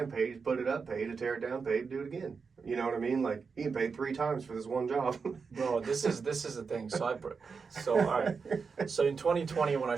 pay to put it up, pay to tear it down, pay to do it again. You know what I mean? Like, he can pay 3 times for this one job. Bro, this is the thing. So all right. So in 2020, when I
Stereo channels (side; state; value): left; quieter; 5.3 dB